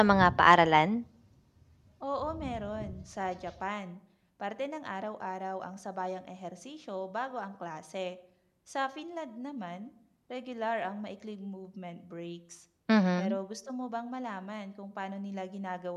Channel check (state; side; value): identical; both; correlation 1.00